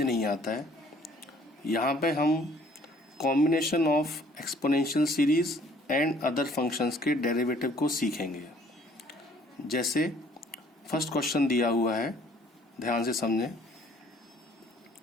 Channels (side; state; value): both; normal; correlation 0.58